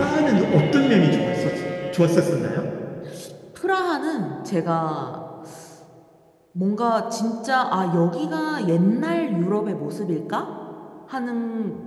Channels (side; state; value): both; identical; correlation 1.00